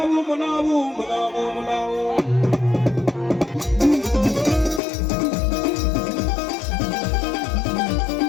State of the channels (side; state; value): right; drops out; at 4.8 s